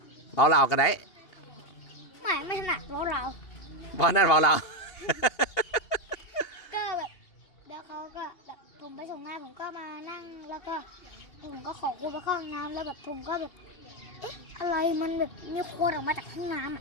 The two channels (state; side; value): late; right; 2.8 ms